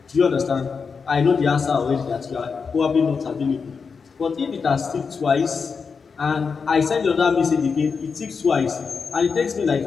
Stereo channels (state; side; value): quieter; right; 5.4 dB